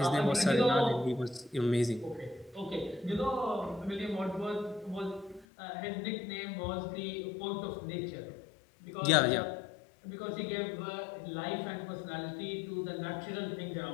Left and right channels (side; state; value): right; drops out; at 5.5 s